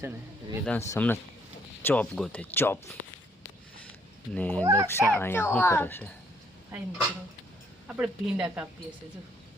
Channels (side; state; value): both; normal; correlation 0.67